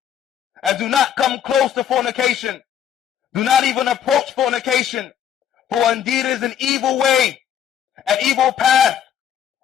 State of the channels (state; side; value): quieter; right; 9.4 dB